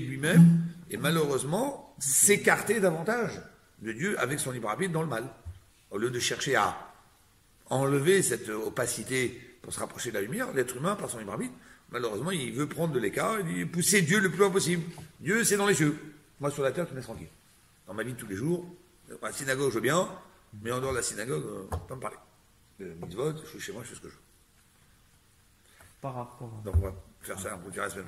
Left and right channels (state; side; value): identical; both; correlation 1.00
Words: lui-même, et malheureusement, s'écarter davantage de Dieu avec son libre arbitre dans le mal. Au lieu de chercher à enlever cette opacité pour se rapprocher de la lumière, l'être humain, par son libre arbitre, malheureusement, il veut prendre de l'écart, il veut pousser Dieu le plus loin possible. Dieu, c'est dans les cieux. Moi, sur la terre, tu me laisses tranquille. Dans ma vie de tous les jours, à la synagogue, je veux bien, mais en dehors de la synagogue, pas me parler. Mitzvot, je suis chez moi, je fais ce que je veux. Par rapport, Donc on va faire ça, on vous dira la semaine